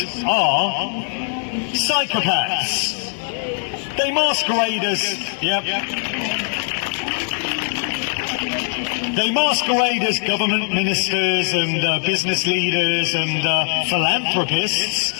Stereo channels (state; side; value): silent; right; digital silence